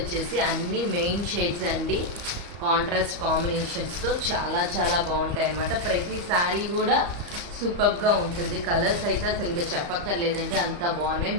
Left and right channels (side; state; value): left; late; 34 ms